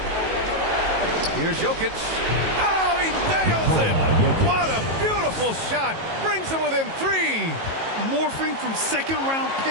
Here's Jokic. Oh, he nails it! What a beautiful shot! Brings him within 3. Morphing from second-round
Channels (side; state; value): left; late; 18 ms